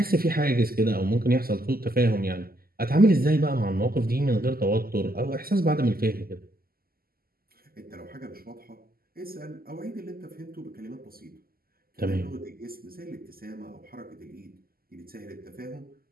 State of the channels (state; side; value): late; left; 0.43 ms